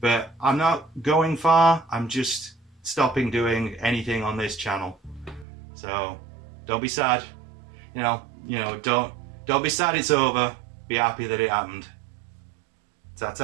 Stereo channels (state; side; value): drops out; left; at 5.5 s